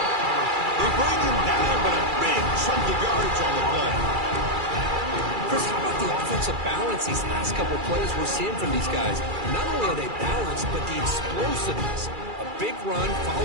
They bring him down, but a big chunk of yardage on the play. Chris, how about the offensive balance these last couple plays we're seeing from these guys? Not only are they balanced, but the explosiveness. A big run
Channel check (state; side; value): late; left; 2.3 ms